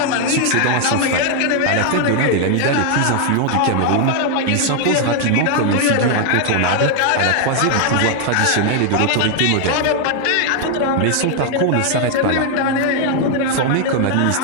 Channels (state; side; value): different; both; correlation 0.00